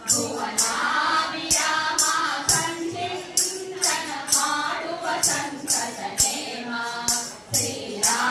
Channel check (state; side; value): identical; both; correlation 1.00